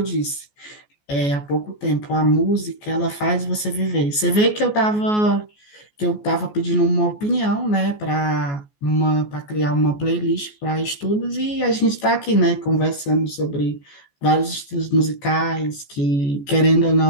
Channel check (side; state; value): right; late; 14 ms